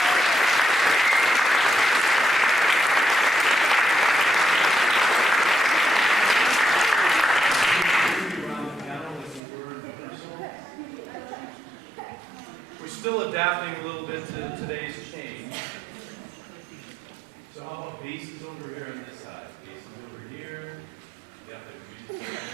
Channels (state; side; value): drops out; left; at 9.4 s